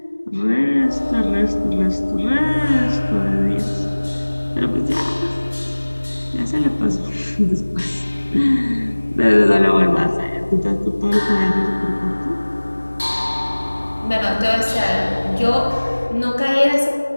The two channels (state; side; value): inverted; both; correlation -1.00